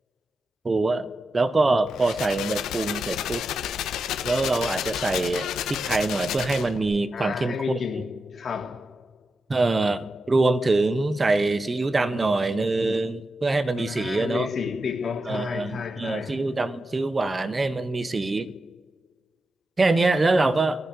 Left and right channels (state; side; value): normal; both; correlation 0.89